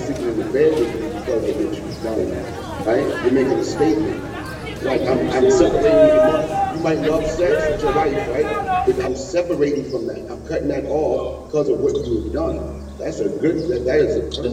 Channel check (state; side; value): identical; both; correlation 1.00